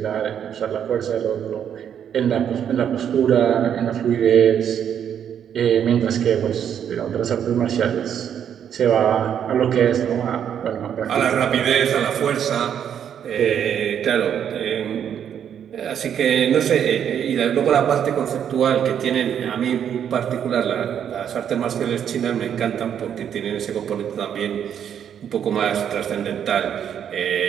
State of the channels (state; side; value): quieter; left; 8.9 dB